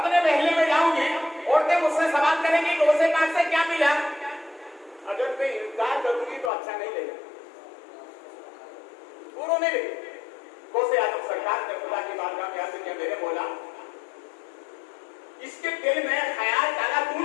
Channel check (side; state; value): right; drops out; at 6.5 s